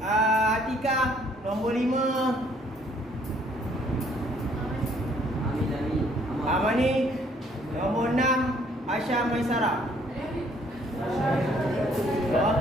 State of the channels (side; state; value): both; normal; correlation 0.63